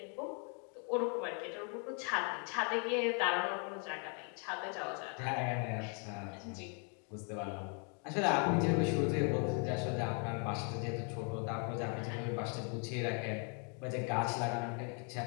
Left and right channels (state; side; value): quieter; right; 39.1 dB